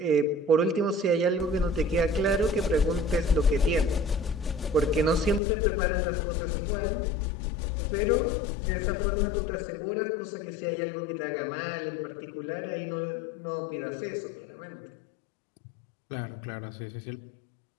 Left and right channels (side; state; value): right; drops out; at 5.4 s